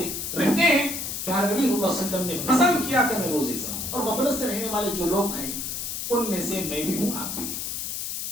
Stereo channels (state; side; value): noise; left; hiss, 4 dB below the sound